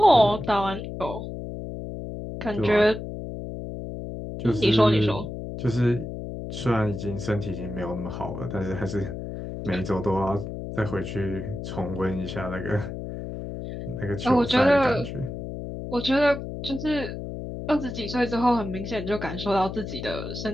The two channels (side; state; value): left; noise; hum, 7 dB below the sound